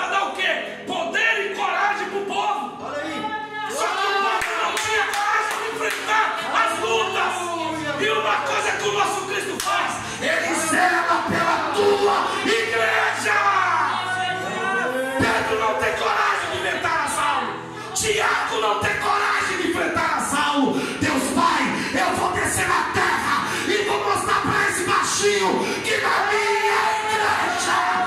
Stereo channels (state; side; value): identical; both; correlation 1.00